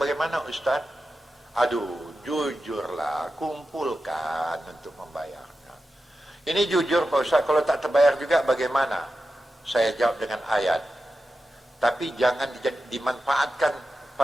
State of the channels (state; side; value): normal; both; correlation 0.91